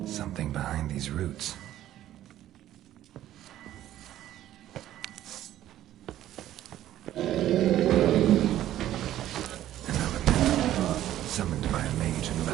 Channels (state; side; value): quieter; left; 12.9 dB